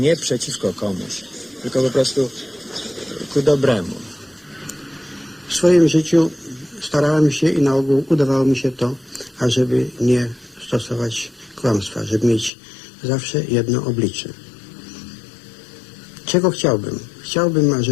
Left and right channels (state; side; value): drops out; right; at 12.5 s